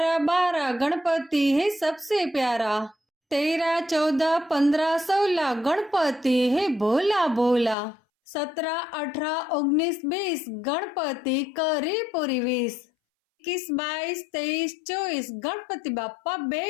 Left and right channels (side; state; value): right; drops out; at 7.8 s